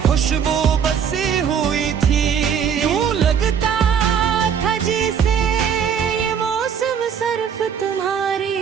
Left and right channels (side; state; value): left; quieter; 7.6 dB